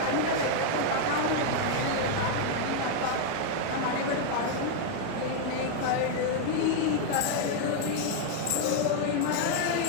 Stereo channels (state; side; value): different; both; correlation 0.00